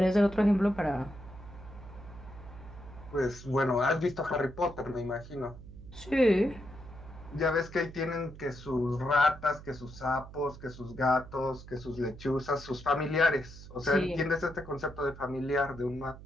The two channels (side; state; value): right; noise; hum, 16 dB below the sound